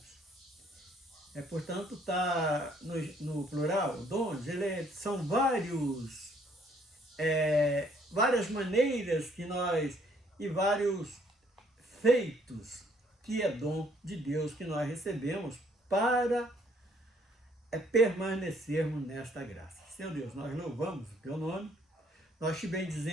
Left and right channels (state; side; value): normal; both; correlation 0.64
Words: portanto, está no plural, dons, são várias maneiras que nós, e vários feitos, que é dom de Deus que nós recebemos para permanecermos nesta graça. Senhor Deus, nós louvamos o teu nome, nós te